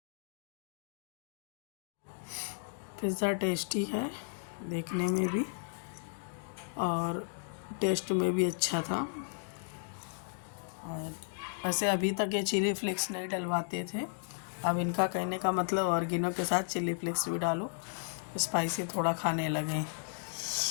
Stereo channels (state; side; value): silent; right; digital silence